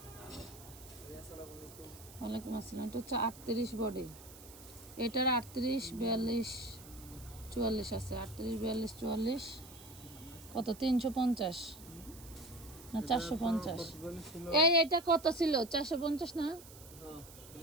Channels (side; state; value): right; noise; hiss, 18 dB below the sound